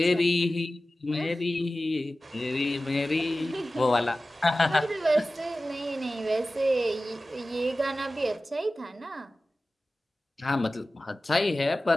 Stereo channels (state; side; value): normal; both; correlation 0.96